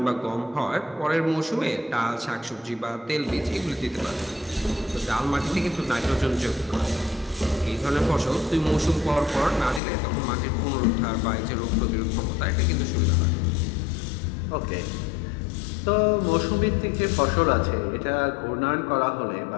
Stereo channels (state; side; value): drops out; right; at 9.8 s